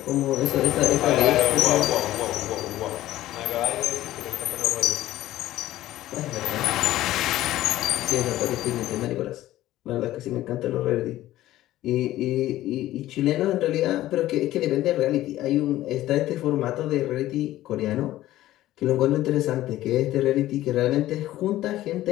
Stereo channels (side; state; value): right; quieter; 14.9 dB